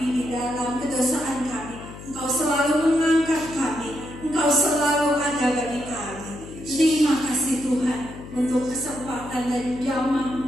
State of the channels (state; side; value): noise; left; hum, 14 dB below the sound